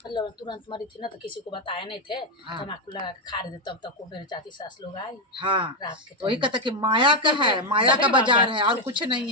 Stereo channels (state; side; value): normal; both; correlation 0.04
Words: मतलब तुरंत मरी थी ना, तो किसी को बताए नहीं थे, तम्बाकू लगा के खा रहे थे, तब तक वो मेरे चाची सास लोग आई। रात के वही कहता कि माया का है, माया का बाजार है और कुछ नहीं